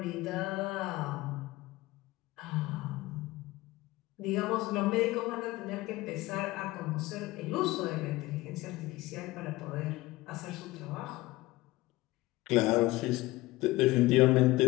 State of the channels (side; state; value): right; quieter; 19.1 dB